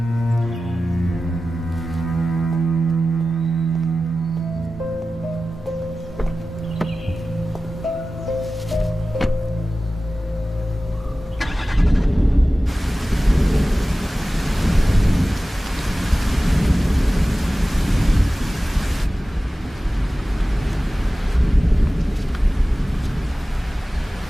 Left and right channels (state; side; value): normal; both; correlation 0.95